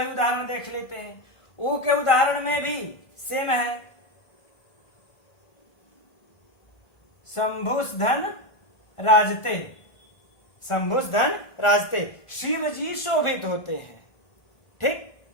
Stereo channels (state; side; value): late; right; 1.5 ms